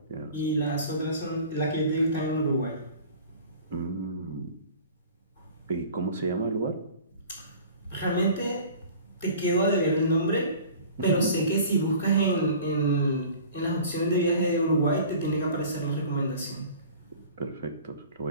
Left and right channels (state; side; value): inverted; both; correlation -0.44